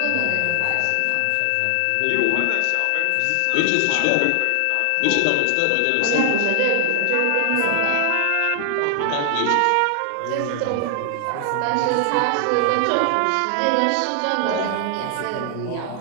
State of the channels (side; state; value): both; different; correlation 0.00